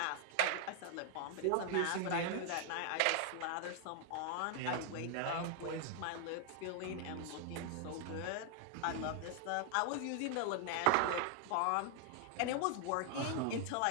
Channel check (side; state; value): both; different; correlation 0.00